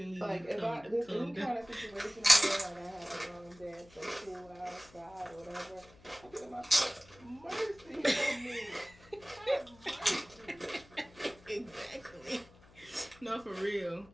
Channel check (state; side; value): noise; left; hum, 24 dB below the sound